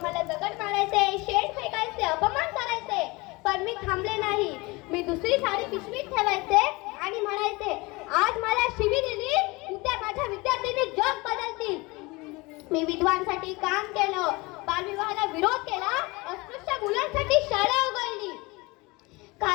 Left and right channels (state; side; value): quieter; right; 24.2 dB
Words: मला दगड मारायचे, शेण फेकायचे, अपमान करायचे, पण मी थांबले नाही. मी दुसरी साडी पिशवीत ठेवायचे आणि म्हणायचे, आज मला शिवी दिली, उद्या माझ्या विद्यार्थ्यांनी जग बदलतील. मी विधवांसाठी काम केलं, बालविवाहाला विरोध केला, अस्पृश्य मुलांसाठी शाळा उघडली.